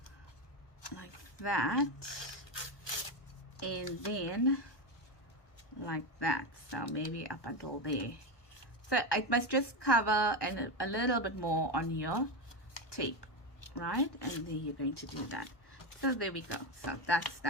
like that, and then like that. So maybe up until there. So it must just cover and a little bit more on your tape, right? And then you're going to do that. So there we go. So that's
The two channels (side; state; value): right; late; 1.1 ms